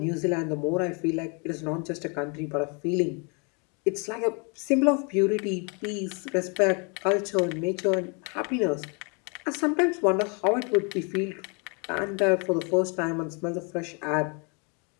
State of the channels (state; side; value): quieter; right; 34.3 dB